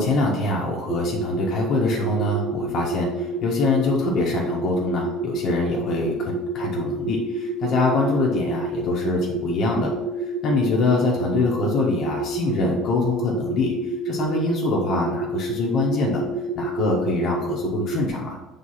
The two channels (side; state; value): both; normal; correlation 0.43